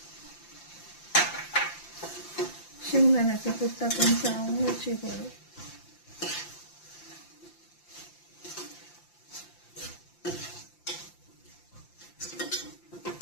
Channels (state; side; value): late; right; 5.8 ms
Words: शेंगदाण्याचं कूट टाकून चाळून घ्यायची बरं.